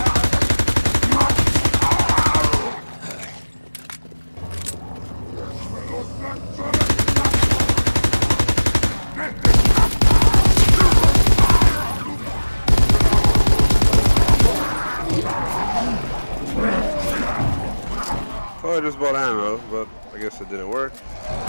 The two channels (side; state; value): both; inverted; correlation -1.00